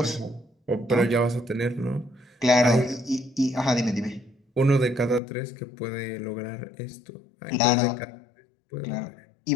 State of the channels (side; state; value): right; drops out; at 5.2 s